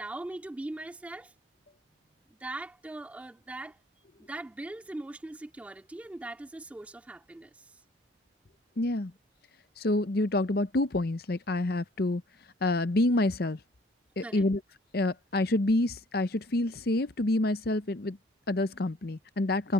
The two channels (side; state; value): both; normal; correlation 0.58